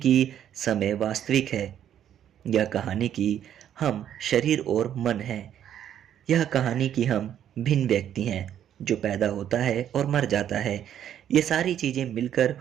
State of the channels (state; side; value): quieter; left; 10.2 dB